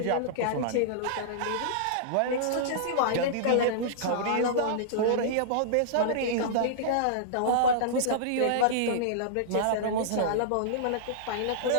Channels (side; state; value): both; different; correlation -0.02